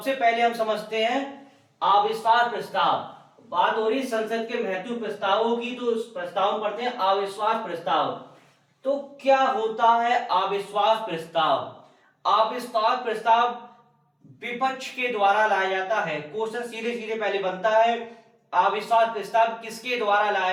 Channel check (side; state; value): both; identical; correlation 1.00